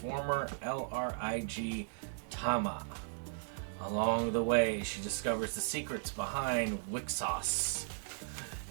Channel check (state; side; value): silent; left; digital silence